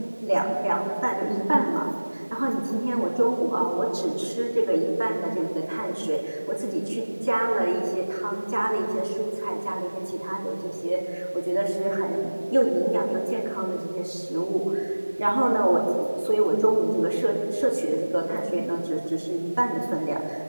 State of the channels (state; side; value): inverted; both; correlation -1.00